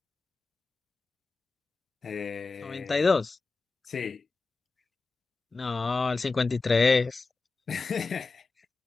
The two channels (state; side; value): quieter; right; 4.0 dB